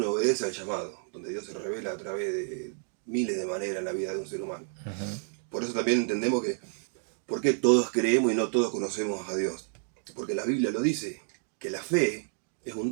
obedece al llamado, donde Dios se revela a través de miles de maneras en la vida de un ser humano. Por eso también entendemos que, ¿por qué todos creemos y no todos conocemos a Dios? Porque la Biblia lo dice, que la fe es un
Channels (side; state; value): left; silent; 58 dB below the other